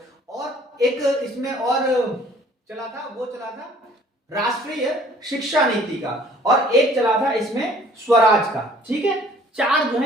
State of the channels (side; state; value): both; normal; correlation 0.55